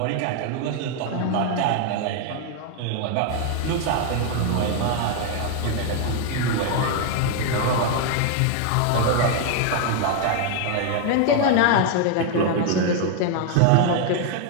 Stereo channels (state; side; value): different; both; correlation 0.00